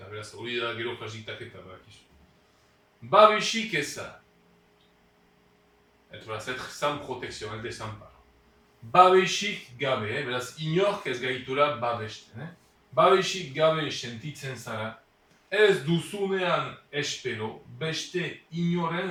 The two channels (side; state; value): both; identical; correlation 1.00